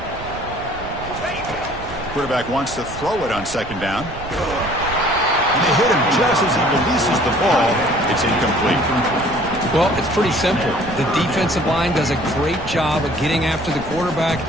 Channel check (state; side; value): noise; right; rumble, 13 dB below the sound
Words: Quarterback wants to throw it on second down. And they hit him just as he releases the ball. It's incomplete. Well, it's pretty simple. The defensive line does a great job of getting after the quarterback